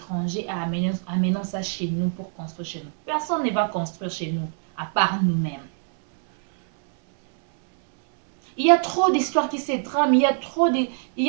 et amenons ça chez nous pour construire chez nous. Personne ne va construire chez nous, à part nous-mêmes. Il y a trop d'histoires qui se trament, il y a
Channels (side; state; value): left; silent; 63 dB below the other